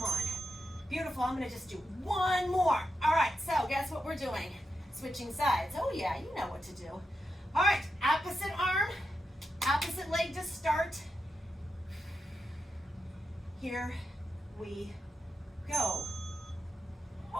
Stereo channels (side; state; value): both; normal; correlation 0.87